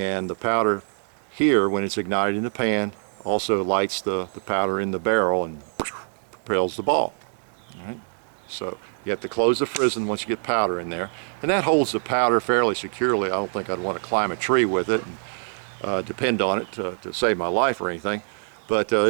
the powder here, when it's ignited in the pan, also lights the powder in the barrel and propels the ball. All right. So you have to close the frizzen once you get powder in there. And that holds the powder fairly securely. I don't think I'd want to climb a tree with it and depend on it to save my life or anything. But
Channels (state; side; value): silent; left; digital silence